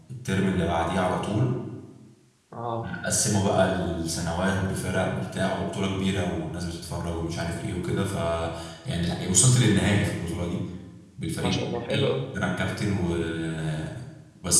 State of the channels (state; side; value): identical; both; correlation 1.00